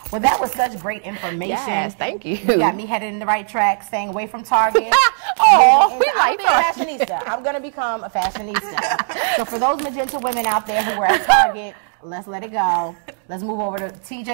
Well, that was such great information. Yes, thank you. You got me headed in the right track, staying away from Target. I'm gonna be a fashionista. I'm gonna become a fashionista. So for those Magenta women out there who were at Target, let's let it go. Let's move over to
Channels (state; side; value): silent; left; digital silence